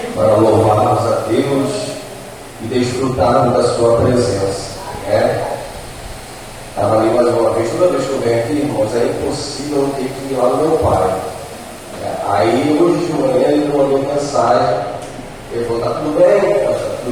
para louvarmos a Deus e desfrutarmos da sua presença. Estava ali mais uma vez, toda vez que eu venho aqui, irmãos, é impossível eu ter que ir lá no meu pai. Aí hoje de manhã ele me mandou mensagem, ele falou, tá tudo bem? Tá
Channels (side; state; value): both; identical; correlation 1.00